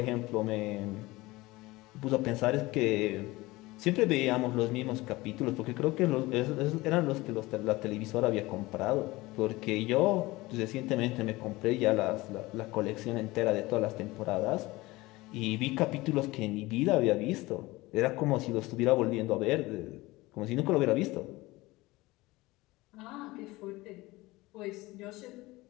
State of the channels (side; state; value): right; quieter; 20.4 dB